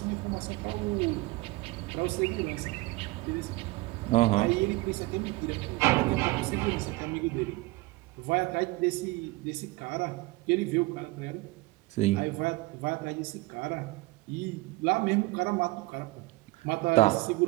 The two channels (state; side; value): quieter; left; 21.5 dB